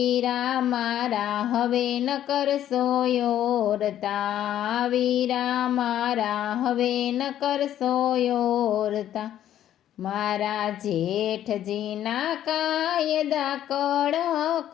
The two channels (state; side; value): quieter; right; 11.4 dB